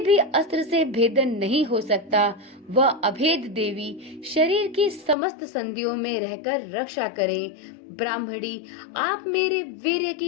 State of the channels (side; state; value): right; drops out; at 5.2 s